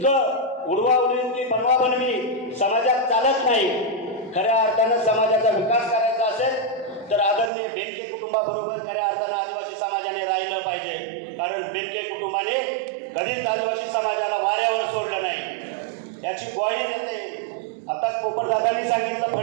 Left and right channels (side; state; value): left; drops out; at 7.5 s